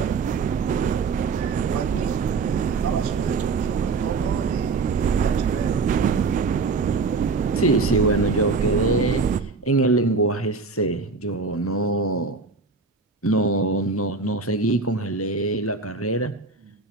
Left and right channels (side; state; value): left; quieter; 4.2 dB